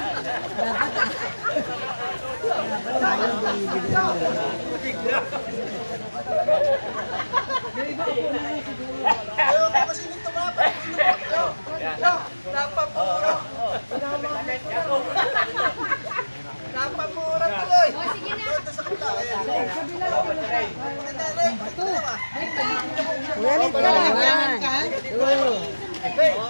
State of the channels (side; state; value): both; inverted; correlation -1.00